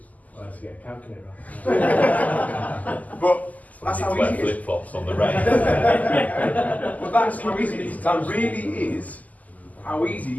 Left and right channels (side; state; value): right; late; 0.077 ms